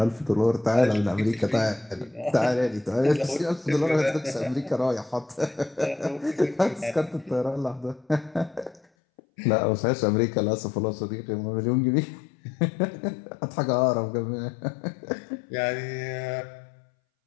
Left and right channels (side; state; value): right; drops out; at 8.8 s